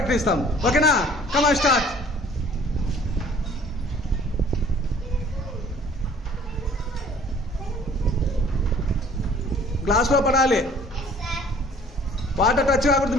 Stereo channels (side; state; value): both; normal; correlation 0.53